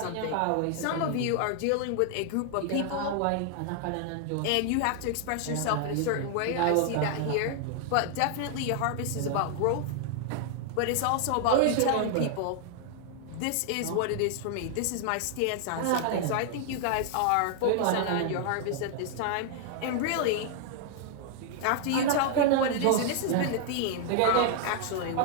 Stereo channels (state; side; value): different; both; correlation 0.00